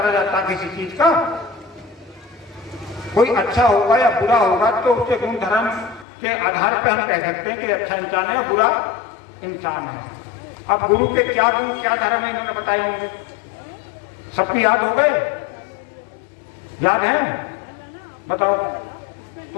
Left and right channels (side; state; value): right; drops out; at 6.1 s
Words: जाता किसी चीज का। कोई अच्छा होगा या बुरा होगा तो उसके गुण धर्म के आधार पर हम कह सकते हैं कि अच्छा इंसान है, बुरा इंसान है। अब गुरु के क्या गुण क्या धर्म है इन्होंने बताए होंगे, सबकी याद हो गए? याद है? बताओ,